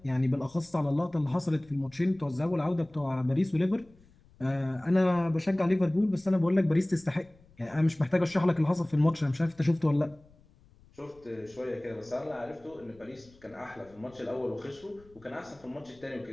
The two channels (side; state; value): left; noise; rumble, 28 dB below the sound